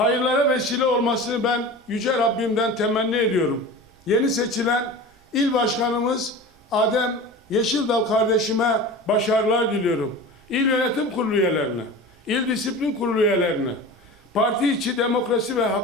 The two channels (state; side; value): normal; both; correlation 0.33